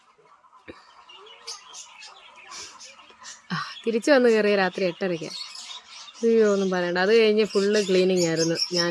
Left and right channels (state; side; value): identical; both; correlation 1.00